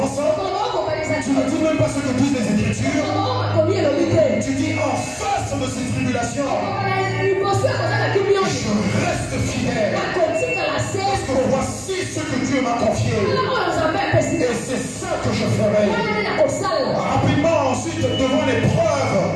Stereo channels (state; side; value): identical; both; correlation 1.00